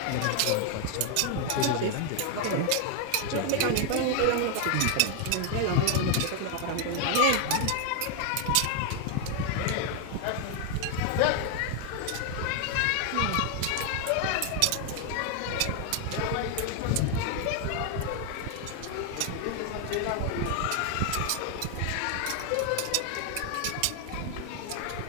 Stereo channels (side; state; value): both; different; correlation 0.00